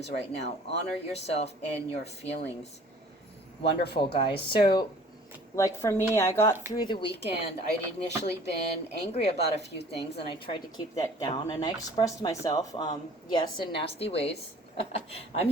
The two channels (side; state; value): both; normal; correlation 0.51